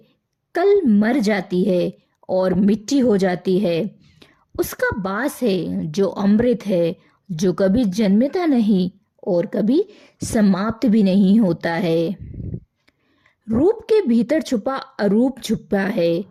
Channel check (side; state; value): both; identical; correlation 1.00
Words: कल मर जाती है और मिट्टी हो जाती है। उसका वास है जो अमृत है, जो कभी जन्मता नहीं और कभी समाप्त भी नहीं होता है। रूप के भीतर छुपा अरूप छुपा है